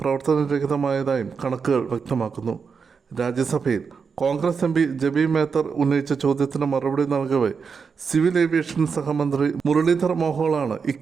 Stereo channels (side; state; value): left; quieter; 5.7 dB